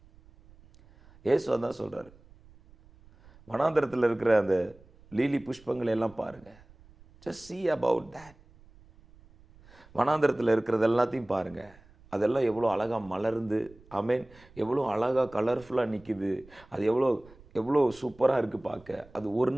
சொல்கிறாரு. வனாந்தரத்தில் இருக்கிற அந்த லீலி புஷ்பங்களை எல்லாம் பாருங்க. just see about that. வனாந்தரத்தில் இருக்கிறது எல்லாத்தையும் பாருங்க. அதெல்லாம் எவ்வளோ அழகாக மலர்ந்து, ஆமேன், எவ்வளோ அழகாக கலர்ஃபுல்லாக நிற்கிது. அது எவ்வளோ சூப்பராக இருக்குது பார்க்க. அது ஒரு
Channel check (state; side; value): noise; right; rumble, 25 dB below the sound